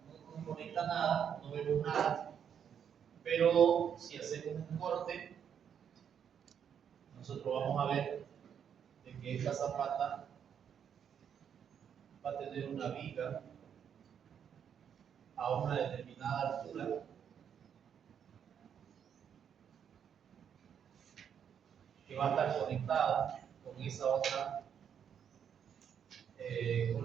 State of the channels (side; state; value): left; quieter; 8.2 dB